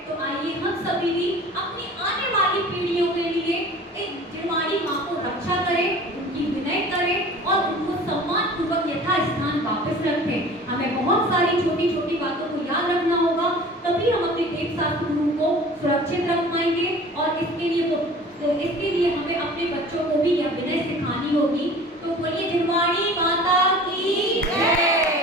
तो आइए हम सभी भी अपनी आने वाली पीढ़ियों के लिए एक जिरवाणी माँ को रक्षा करें, उनकी विनय करें और उनको सम्मान पूर्वक यथास्थान वापस रखें। हमें बहुत सारी छोटी छोटी बातों को याद रखना होगा, तभी हम अपने वेदशास्त्र गुरु को सुरक्षित रख पाएंगे। और इसके लिए हमें अपने बच्चों को भी यह विनय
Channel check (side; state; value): both; normal; correlation 0.43